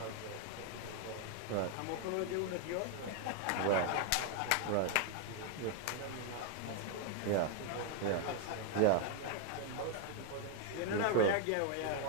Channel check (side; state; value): both; different; correlation 0.00